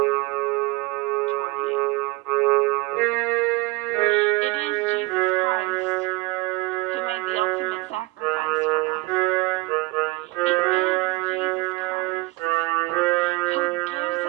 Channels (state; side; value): quieter; left; 23.3 dB